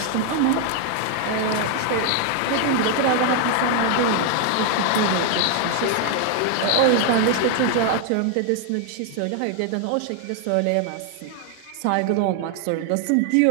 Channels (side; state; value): both; different; correlation 0.00